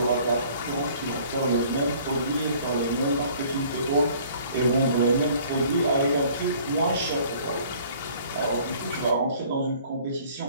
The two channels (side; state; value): both; inverted; correlation -0.54